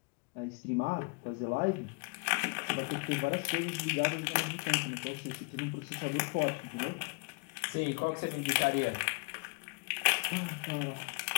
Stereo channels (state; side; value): quieter; right; 32.2 dB